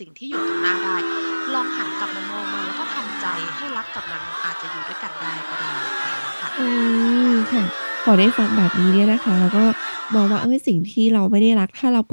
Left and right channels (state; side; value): inverted; both; correlation -1.00